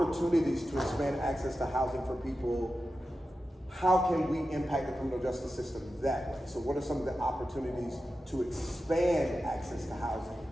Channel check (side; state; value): both; normal; correlation 0.92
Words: to expand access to housing for people, how can we impact the criminal justice system that way? So what are some of the opportunities to expand access to housing